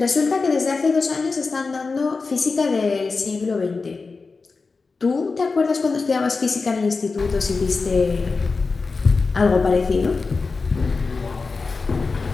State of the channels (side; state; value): right; quieter; 4.2 dB